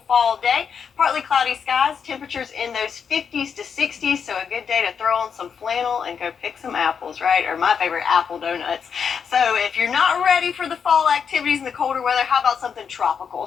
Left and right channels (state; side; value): quieter; right; 6.8 dB